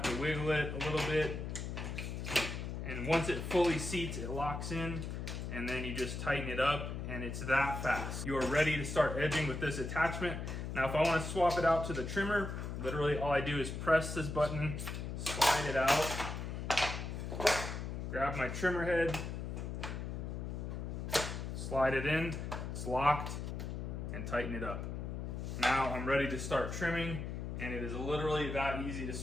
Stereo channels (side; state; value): left; noise; hum, 5 dB below the sound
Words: to wiggle it a little bit. And once it fully seats, it locks in, and then you just tighten it up, and it's that fast. You are ready to start edging with this attachment. Now, if I want to swap it out to the trimmer, literally all I do is press this button, slide it out, grab my trimmer head, slide it in, it's locked, and tighten it up. Now I'm ready to start trimming, and it is literally that easy to